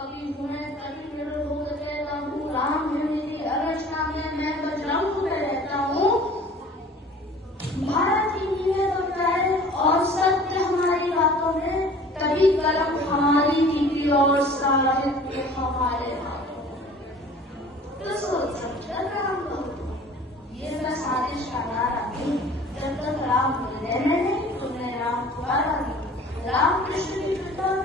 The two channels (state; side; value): normal; both; correlation 0.47